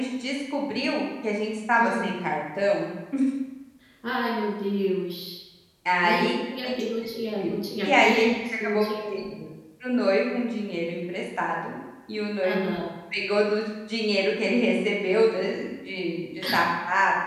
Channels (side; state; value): both; identical; correlation 1.00